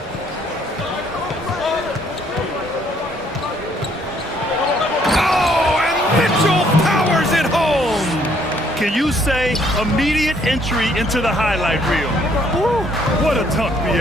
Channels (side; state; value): both; normal; correlation 0.66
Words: Mitchell powers it home. Can you say immediate entry into the highlight reel? Woo, what a dunk,